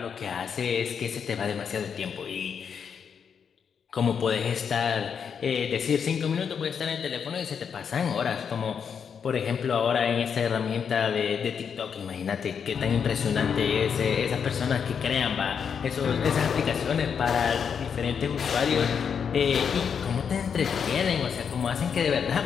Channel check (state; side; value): quieter; right; 7.0 dB